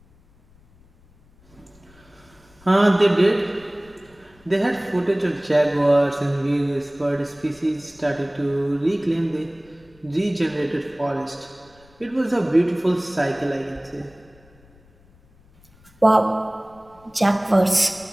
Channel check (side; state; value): left; noise; rumble, 29 dB below the sound